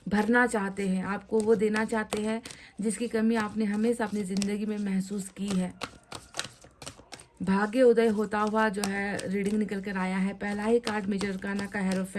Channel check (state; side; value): identical; both; correlation 1.00